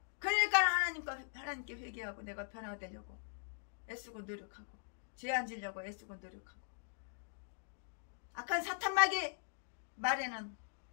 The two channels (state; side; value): silent; right; digital silence